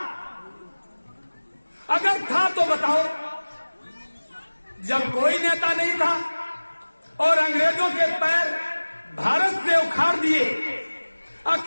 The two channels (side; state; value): both; inverted; correlation -1.00